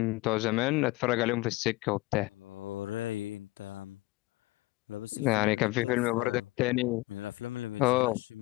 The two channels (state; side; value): quieter; right; 21.0 dB